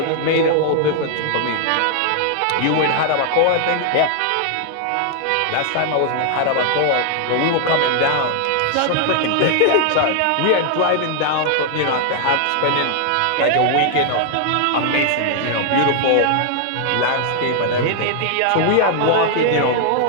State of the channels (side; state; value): both; different; correlation 0.00